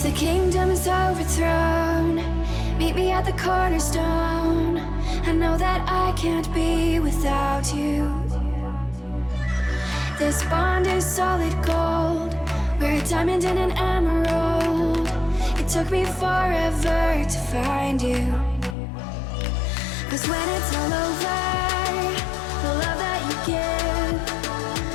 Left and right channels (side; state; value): right; drops out; at 18.8 s